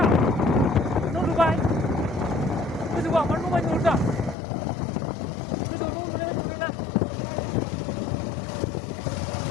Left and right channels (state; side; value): drops out; right; at 4.4 s